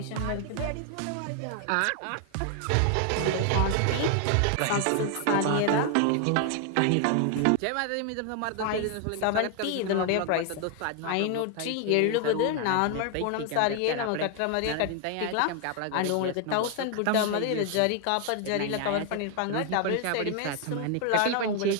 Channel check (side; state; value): both; different; correlation 0.00